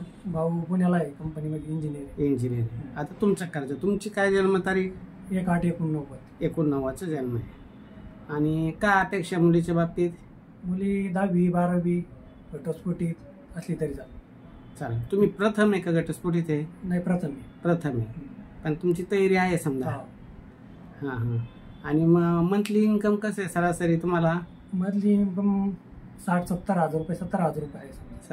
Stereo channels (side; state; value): both; identical; correlation 1.00